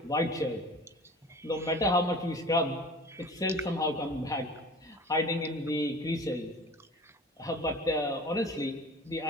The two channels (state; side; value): normal; both; correlation 0.41